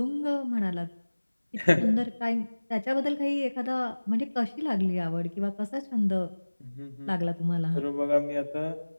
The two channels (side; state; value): both; inverted; correlation -1.00